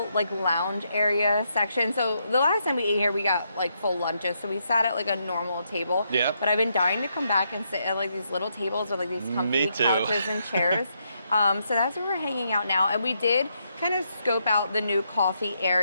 lounge area section. So the last time we ate here, we got full lunches. So we sat at a normal table. Yeah. But I've been dying to come back and sit at these little tables with these comfy couches and chairs. So that's where we're hanging out now. And we did kind of scope out the new coffee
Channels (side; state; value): both; inverted; correlation -0.78